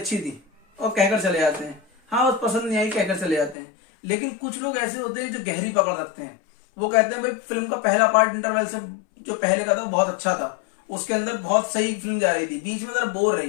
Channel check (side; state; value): right; drops out; at 3.6 s